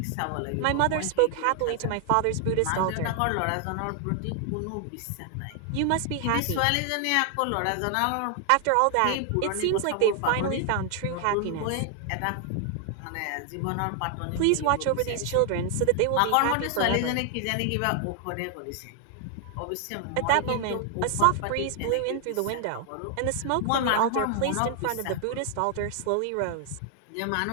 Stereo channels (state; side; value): different; both; correlation 0.00